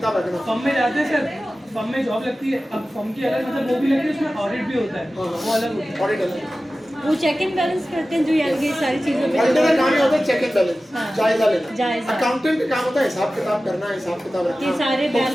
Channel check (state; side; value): normal; both; correlation 0.95